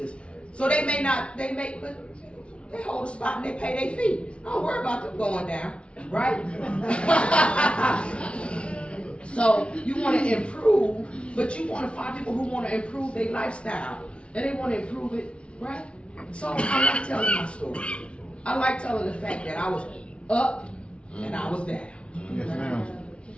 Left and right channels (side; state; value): right; late; 0.059 ms